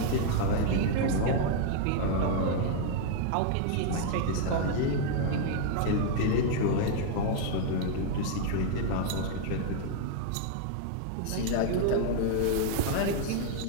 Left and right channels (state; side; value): different; both; correlation 0.00